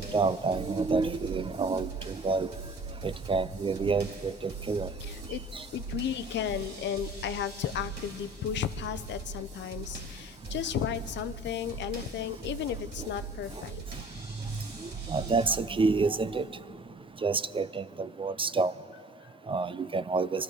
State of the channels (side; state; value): both; normal; correlation 0.46